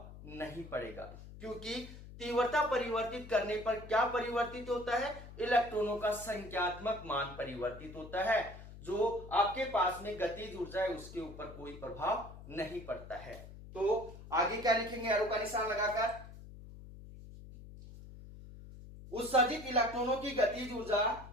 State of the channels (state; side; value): noise; left; hum, 15 dB below the sound